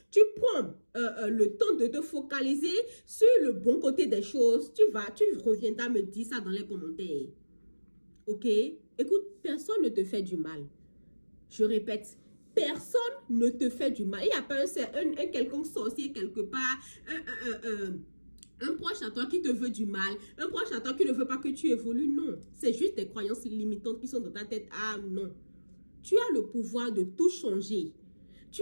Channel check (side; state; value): both; inverted; correlation -1.00